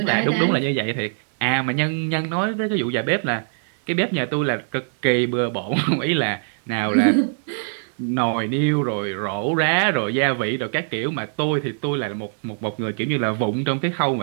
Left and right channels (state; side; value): silent; left; 64 dB below the other